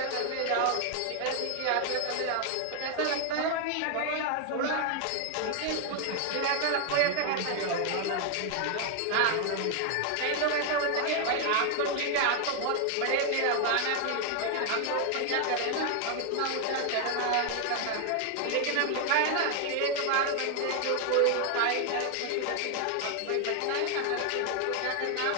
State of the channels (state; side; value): different; both; correlation 0.01